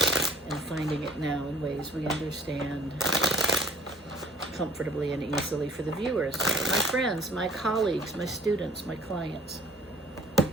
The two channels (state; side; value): normal; both; correlation 0.52